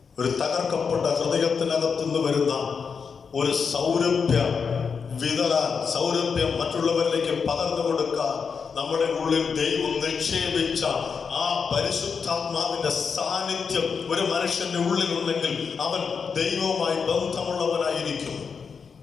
ഒരു തകർക്കപ്പെട്ട ഹൃദയത്തിനകത്തുനിന്ന് വരുന്ന ഒരു സൗരഭ്യം വിതറാൻ, സൗരഭ്യം മറ്റുള്ളവരിലേക്ക് പകർന്നു കൊടുക്കാൻ നമ്മുടെ ഉള്ളിൽ ദൈവം നിക്ഷേപിച്ച ആ പരിശുദ്ധാത്മാവിന്റെ സാന്നിധ്യം ഒരു മനുഷ്യന്റെ ഉള്ളിൽ ഉണ്ടെങ്കിൽ അവൻ ദൈവവുമായി ബന്ധമുള്ളവനായിരിക്കും.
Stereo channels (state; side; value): quieter; right; 5.9 dB